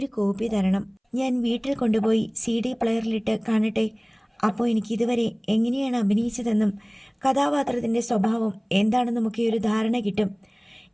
കോപ്പി തരണം. ഞാൻ വീട്ടിൽ കൊണ്ടുപോയി CD പ്ലെയറിലിട്ട് കാണട്ടെ. അപ്പോൾ എനിക്കിതുവരെ എങ്ങനെയാണ് അഭിനയിച്ചതെന്നും കഥാപാത്രത്തിൻ്റെ സ്വഭാവം എന്താണെന്നുമൊക്കെ ഒരു ധാരണ കിട്ടും.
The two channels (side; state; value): both; identical; correlation 1.00